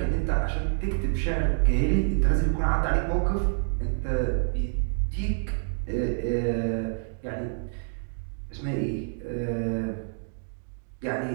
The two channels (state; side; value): silent; left; digital silence